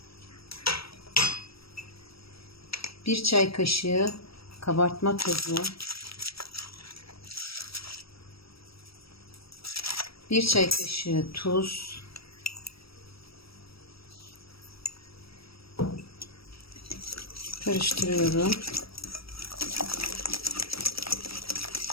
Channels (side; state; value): right; late; 0.76 ms